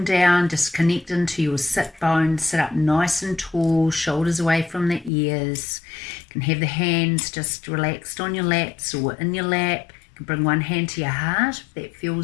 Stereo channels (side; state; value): right; drops out; at 5.1 s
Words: down, just connect into your sit bones. Sit up nice and tall, shoulders away from the ears. You can have the hands just relaxed on your laps or in your lap. You can bring one hand to your heart if that